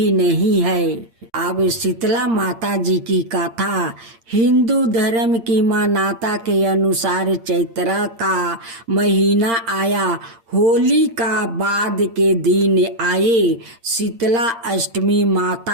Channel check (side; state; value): left; late; 8.7 ms